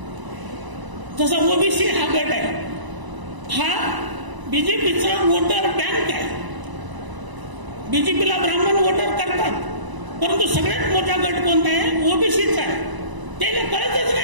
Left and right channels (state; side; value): late; left; 1.0 ms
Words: जसा ओबीसी हा गट आहे, हा बीजेपीचा वोटर बँक आहे. बीजेपीला ब्राह्मण वोटर करतात, परंतु सगळ्यात मोठा गट कोणता आहे, ओबीसीचा आहे. त्याला कळतच